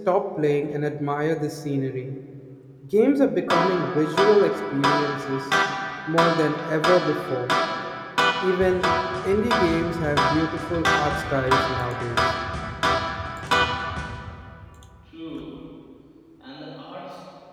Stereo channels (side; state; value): both; identical; correlation 1.00